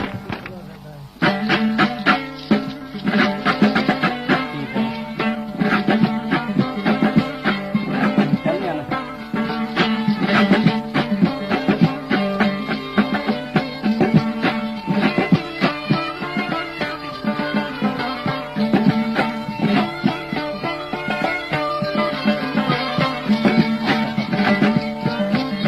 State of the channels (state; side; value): identical; both; correlation 1.00